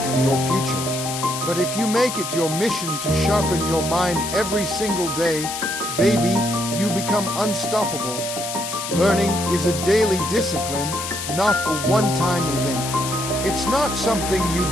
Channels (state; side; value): noise; left; hiss, 6 dB below the sound